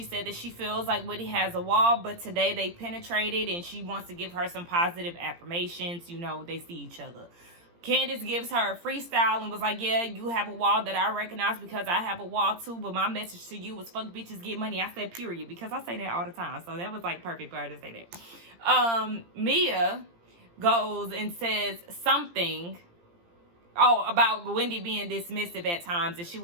said that she feels like Wendy has a wall, but today they penetrated and she wants to give her some positive affirmations. You know, they see each other. Candice gives her a freestyle and was like, yeah, you have a wall that I recognize because I have a wall too, but my message to you was fuck bitches, get money. I said period because I say that all the time. So that was like perfect for her to say that. Mia goes and says something about Wendy being dismissive at times, and she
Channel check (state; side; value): late; left; 17 ms